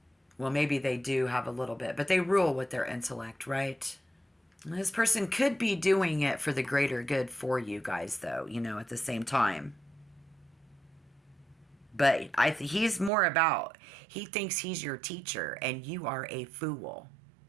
Well, maybe they do have a little bit, but they rule with their intellect, right? This person could be doing it for the greater good for you guys, though, you know, at the same time. But he's more about, he thinks he's your teacher and you are a fool.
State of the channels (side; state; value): left; drops out; at 13.1 s